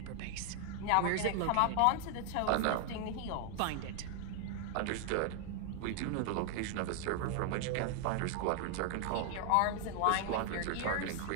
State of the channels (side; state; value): both; different; correlation 0.00